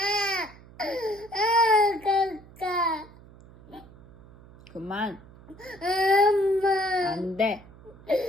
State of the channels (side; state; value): right; noise; hum, 22 dB below the sound